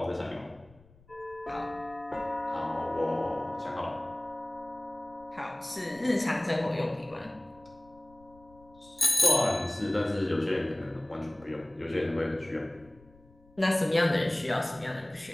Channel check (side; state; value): left; noise; rumble, 27 dB below the sound